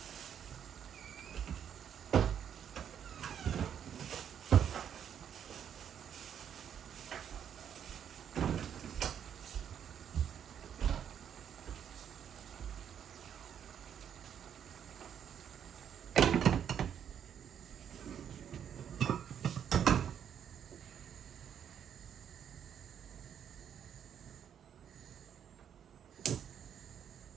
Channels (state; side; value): quieter; left; 8.8 dB